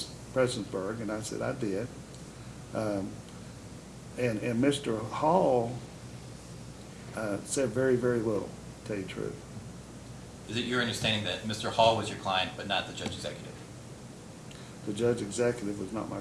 Prestonsburg, and I said I did. And Mr. Hall said very, very little, to tell you the truth. Is it your understanding that Mr. Hall was your client but not the judge executive? The judge executive was not my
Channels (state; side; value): identical; both; correlation 1.00